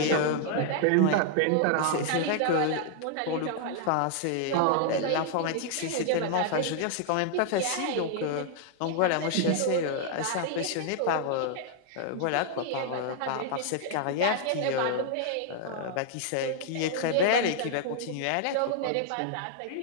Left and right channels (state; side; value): different; both; correlation 0.00